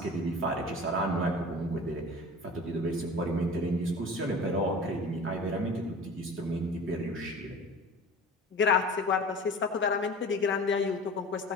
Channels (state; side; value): normal; both; correlation 0.39